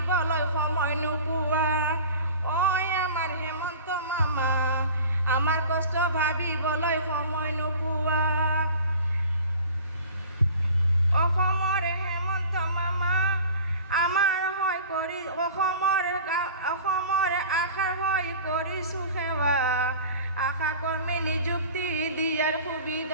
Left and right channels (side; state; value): both; inverted; correlation -0.41